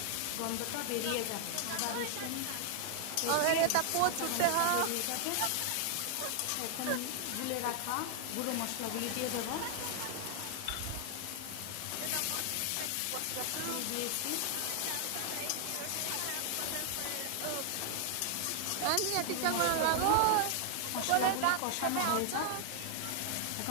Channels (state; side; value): different; both; correlation 0.00